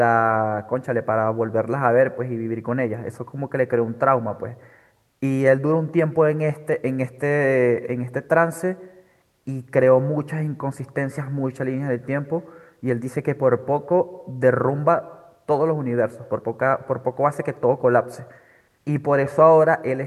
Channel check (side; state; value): both; identical; correlation 1.00